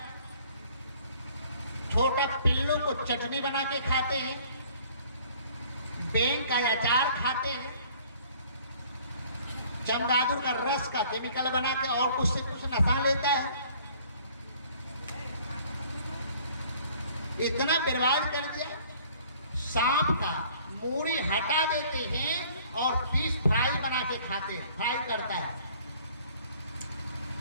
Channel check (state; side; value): inverted; both; correlation -0.55